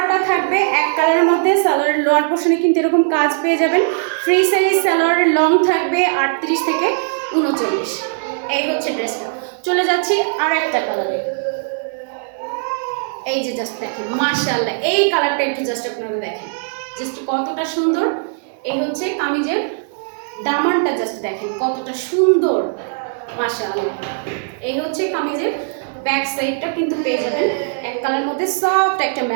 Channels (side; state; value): left; silent; digital silence